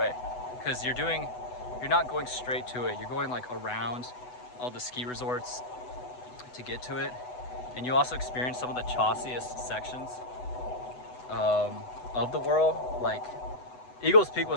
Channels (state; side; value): late; right; 8.0 ms